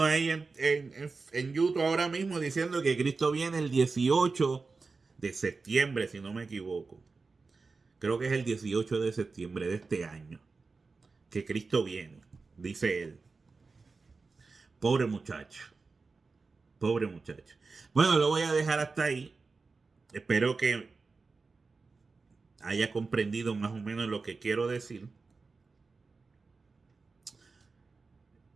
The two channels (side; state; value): left; quieter; 4.2 dB